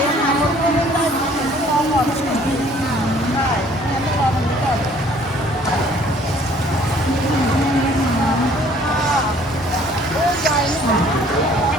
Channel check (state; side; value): normal; both; correlation 0.57